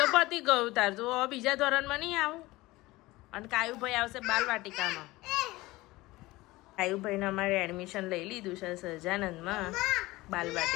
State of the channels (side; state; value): right; quieter; 19.8 dB